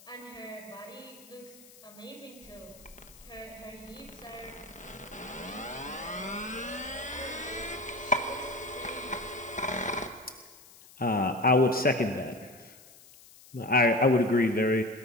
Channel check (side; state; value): left; noise; hiss, 22 dB below the sound